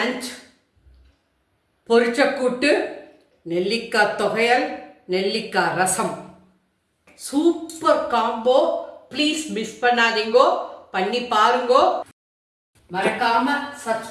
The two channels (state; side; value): identical; both; correlation 1.00